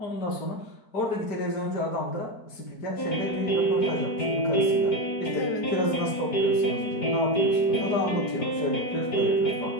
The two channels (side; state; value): right; late; 4.6 ms